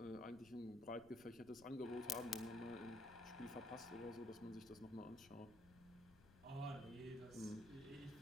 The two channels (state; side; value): noise; left; rumble, 21 dB below the sound